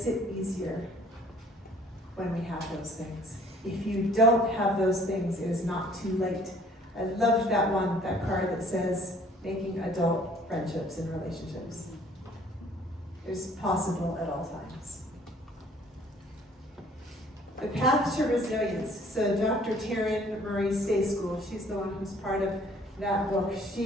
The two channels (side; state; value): both; normal; correlation 0.56